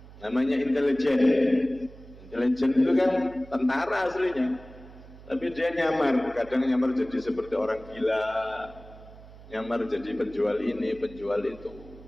namanya intelijen. Intelijen itu kan tentara aslinya, tapi dia nyamar, kadang nyamar jadi seperti orang gila, nyamar jadi penjual ini, penjual itu.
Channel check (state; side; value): noise; right; hum, 19 dB below the sound